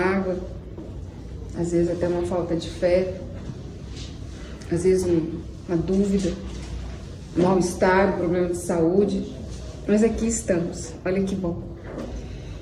às vezes até uma falta de fé, às vezes uma dúvida, um mal-estar, um problema de saúde. Mas aqui estamos, olha que bom.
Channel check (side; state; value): both; identical; correlation 1.00